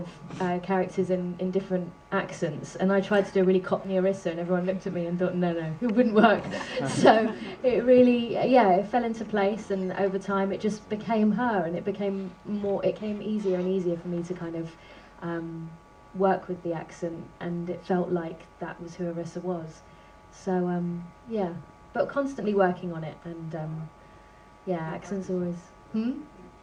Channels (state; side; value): identical; both; correlation 1.00